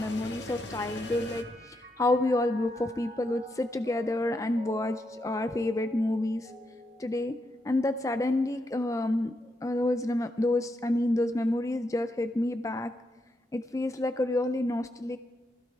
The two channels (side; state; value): both; normal; correlation 0.82